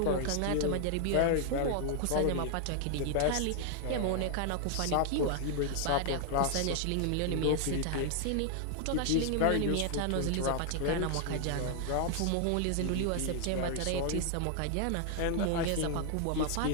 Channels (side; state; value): both; different; correlation 0.00